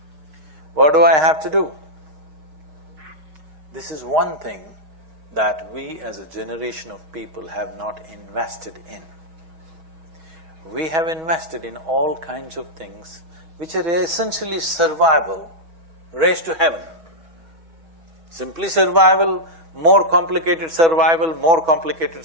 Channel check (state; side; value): late; left; 6.3 ms